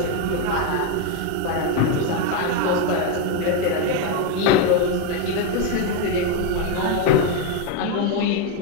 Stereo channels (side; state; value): both; different; correlation 0.02